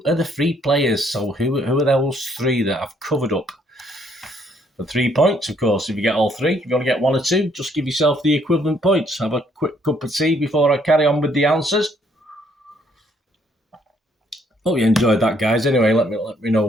are the 3 players? So who are those 3 that I've covered up? For 3 points, of course. If you get all 3, if you want to get 1 or 2, just give yourself the equivalent points. Have a quick cup of tea before I carry on with the answers. Hope you enjoyed that, guys. Anyway, let me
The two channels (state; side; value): normal; both; correlation 0.67